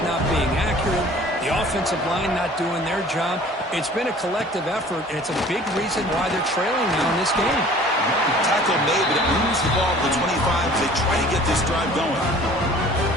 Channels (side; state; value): both; normal; correlation 0.49